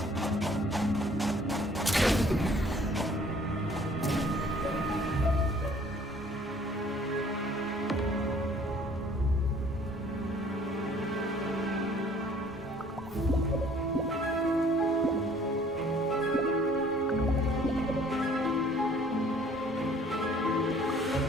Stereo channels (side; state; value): both; normal; correlation 0.56